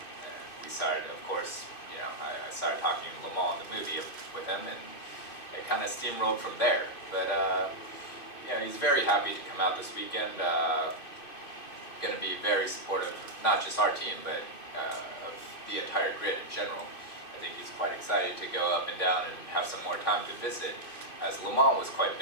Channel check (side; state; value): right; late; 2.6 ms